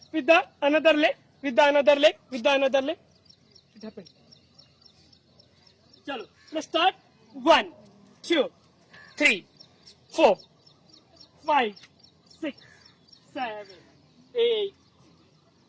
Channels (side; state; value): both; identical; correlation 1.00